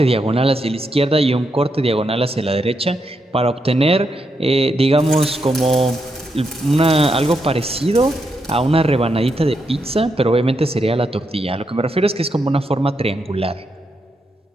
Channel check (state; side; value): normal; both; correlation 0.82